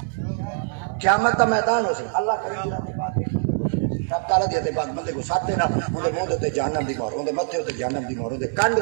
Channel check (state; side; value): silent; left; 63 dB below the other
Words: قیامت کا میدان ہو سی اللہ کرے گی رات بات رب تعالیٰ دیتے بعد بندے کو ساتھ دینا اندے موہ دیتے جہنم دی مور اندے متھے ہوتے جہنم دی مور اندے کانڈ